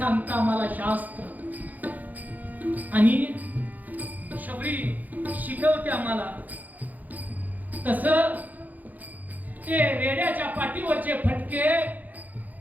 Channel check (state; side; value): late; left; 0.081 ms